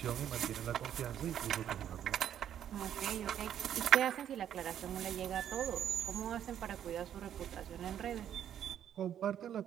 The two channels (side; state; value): left; quieter; 10.0 dB